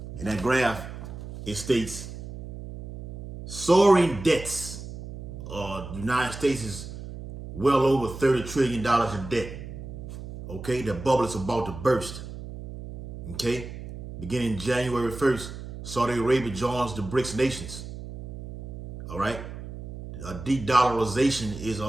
In that graph, it states soaring debts. The United States is well over $30 trillion in debt. Okay? The bubble is about to burst. Okay? Beginning January 1st, Saudi Arabia joins the BRICS nations. All right? A de-dollarization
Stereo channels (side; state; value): right; noise; hum, 11 dB below the sound